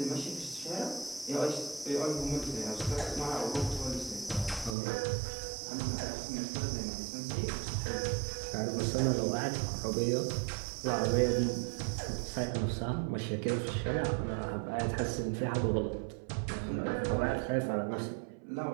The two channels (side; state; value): left; drops out; at 4.8 s